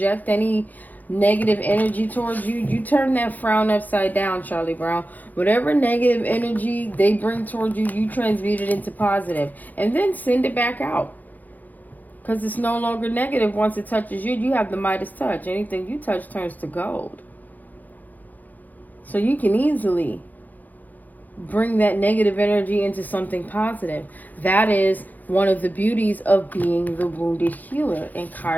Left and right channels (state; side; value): late; right; 0.082 ms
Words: any negative energy towards you, you turn that frown upside down, Charlie Brown. Whatever negative energy they bring towards you, you transmute it into positive. And then send it back out. Because it's no longer negative once it touches you. You have the Midas touch. Anything you touch turns to gold. So you can easily bring that negative energy into something positive. That is one of the beauties of being the wounded healer in